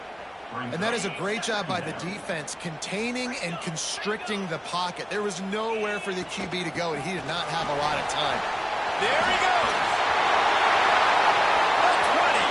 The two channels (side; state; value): both; identical; correlation 1.00